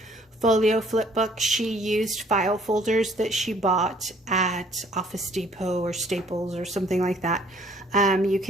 folio flip book. She used file folders that she bought at Office Depot or Staples or something like that. You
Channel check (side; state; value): both; normal; correlation 0.60